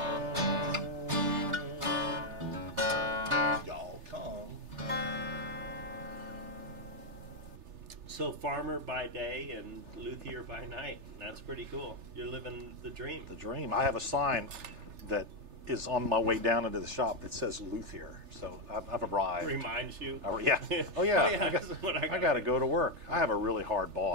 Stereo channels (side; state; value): left; late; 3.3 ms